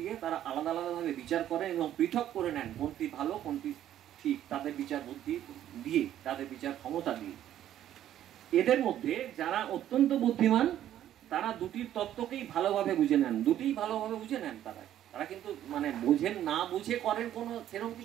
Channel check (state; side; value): quieter; left; 11.6 dB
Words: তারা আলাদা আলাদাভাবে বিচার করেন এবং পৃথক করে নেন কোনটি ভালো কোনটি ঠিক, তাদের বিচার বুদ্ধি দিয়ে, তাদের বিচার ক্ষমতা দিয়ে। এদের মধ্যে যারা অত্যন্ত বুদ্ধিমান তারা দুটির তত্ত্বকেই ভালোভাবে বুঝে নেন, তারা কিন্তু মানে বোঝেন না বুঝে করেন কোনো সেরকম